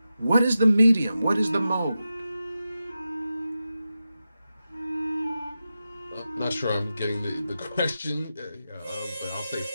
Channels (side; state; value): both; inverted; correlation -0.91